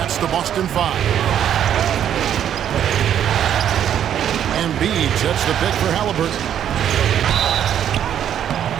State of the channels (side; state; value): left; quieter; 9.8 dB